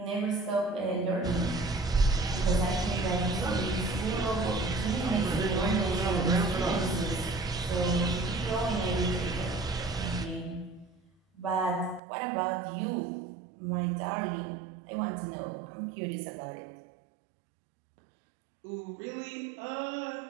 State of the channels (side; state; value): left; drops out; at 12.0 s